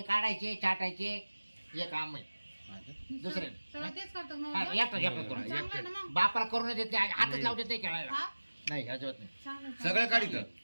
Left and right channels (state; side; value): inverted; both; correlation -1.00